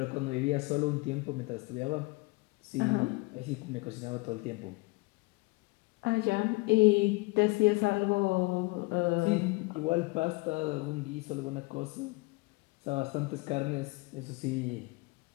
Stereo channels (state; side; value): quieter; right; 25.3 dB